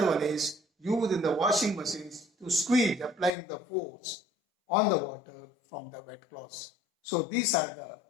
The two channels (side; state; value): right; drops out; at 3.3 s